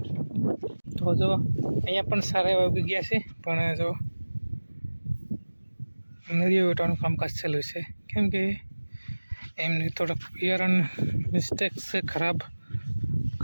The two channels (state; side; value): inverted; both; correlation -1.00